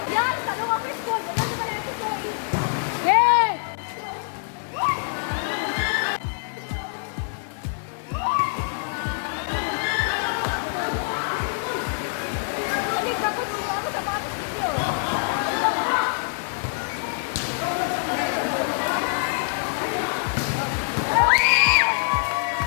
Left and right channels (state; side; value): silent; right; digital silence